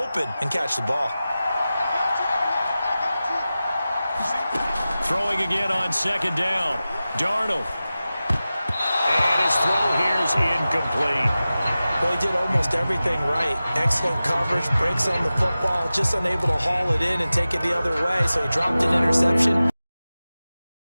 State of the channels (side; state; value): both; inverted; correlation -0.95